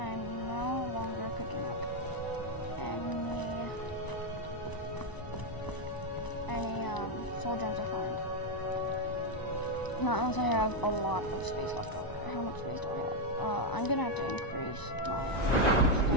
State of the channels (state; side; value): late; right; 1.0 ms